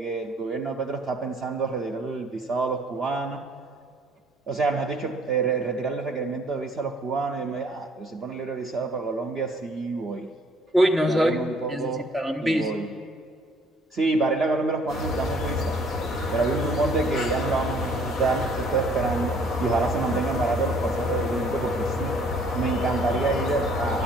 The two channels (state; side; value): normal; both; correlation 0.59